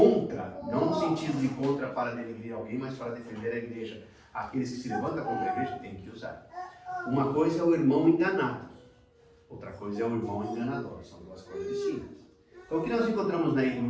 não no sentido de contra para denegrir alguém, mas para defender a igreja. Aqueles que se levantam contra a igreja tem que usar. Uma coisa é o irmão enganado, outra coisa é o irmão enganador. São duas coisas distintas. Então o que nós encontramos em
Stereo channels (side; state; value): both; identical; correlation 1.00